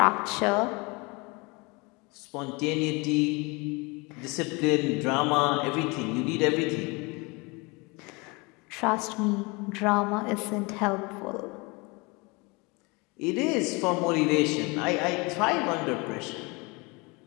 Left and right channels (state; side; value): quieter; right; 27.3 dB